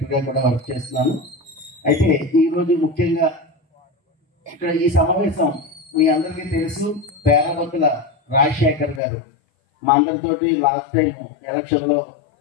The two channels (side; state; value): right; drops out; at 9.0 s